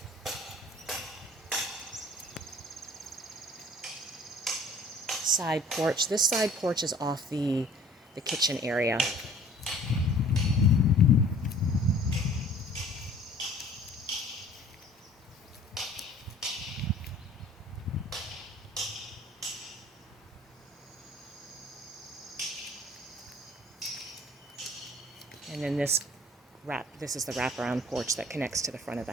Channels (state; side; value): normal; both; correlation 0.51